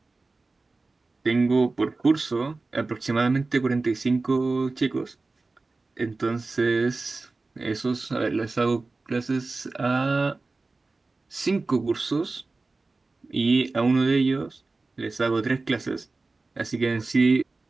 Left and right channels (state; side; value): quieter; left; 3.6 dB